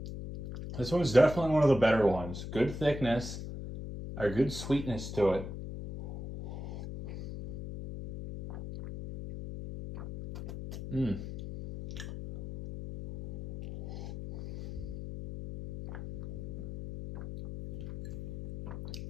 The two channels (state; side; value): noise; left; hum, 8 dB below the sound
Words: This one's definitely one of the better ones. Good thickness, or good sweetness to it.